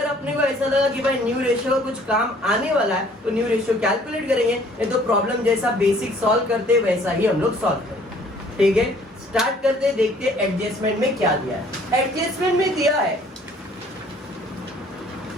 अपने को ऐसा लगा कि भाई न्यू रेशियो का कुछ काम आने वाला है तो न्यू रेशियो कैलकुलेट करेंगे, नहीं तो प्रॉब्लम जैसा बेसिक सॉल्व करते वैसा ही हम लोग सॉल्व करेंगे। ठीक है, स्टार्ट करते, देखते एडजस्टमेंट में क्या दिया है। एडजस्टमेंट में दिया है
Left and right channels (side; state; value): both; normal; correlation 0.57